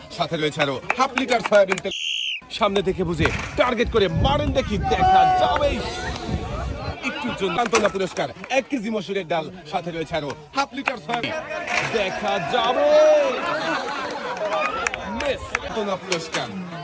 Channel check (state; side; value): identical; both; correlation 1.00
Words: সাথে রয়েছে আরো হাফ লিটার সয়াবিন তেল। সামনে থেকে বুঝে টার্গেট করে মারেন, দেখি দেখা যাবে। একটুর জন্য সান্ত্বনা পুরস্কার 1 কেজি মসুরের ডাল, সাথে রয়েছে আরো হাফ লিটার সয়াবিন, দেখা যাবে। মিস সান্ত্বনা পুরস্কার